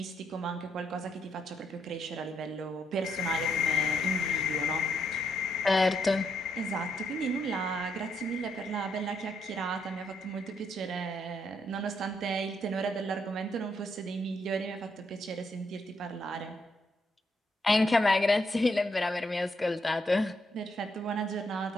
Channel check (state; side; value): normal; both; correlation 0.76